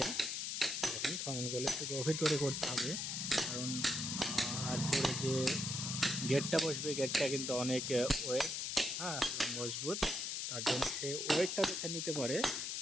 দেখেন খননগুলো একটু গভীর করে করতে হবে, কারণ তারপরে যে গেটটা বসবে, গেটটা কিন্তু অনেক ওয়েট, হ্যাঁ, মজবুত। তার জন্য সেই ওয়েটটা যাতে নিতে পারে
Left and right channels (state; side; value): noise; left; hiss, 2 dB below the sound